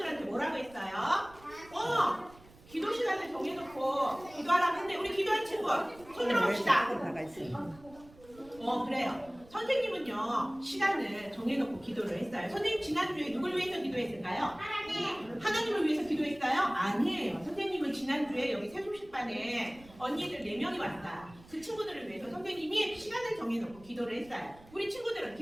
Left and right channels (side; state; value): right; noise; rumble, 23 dB below the sound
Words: 뭐라고 했어요? 기도 시간을 정해놓고 기도하라고 했는데 우리 기도한 친구 손 들어봅시다. 그래요. 선생님은요 시간을 정해놓고 기도를 했어요. 선생님 지난주에 누굴 위해서 기도했을까요? 하나님을 위해서 기도했어요? 아니에요. 선생님은 지난주에 여기 세종식반에 언니들 4명이 왔어요. 그 친구들을 위해서 선생님이 시간을 정해놓고 기도를 했어요. 우리 친구들은